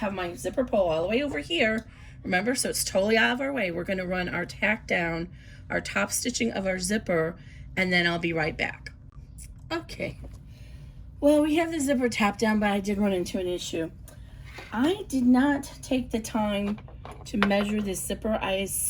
my zipper pull all the way over here. Remember, so it's totally out of our way. We're going to run our tack down, our top stitching of our zipper, and then I'll be right back. Okay. Well, we have the zipper tapped down, but I did run into an issue. I did not take the time to measure this zipper. I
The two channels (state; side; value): identical; both; correlation 1.00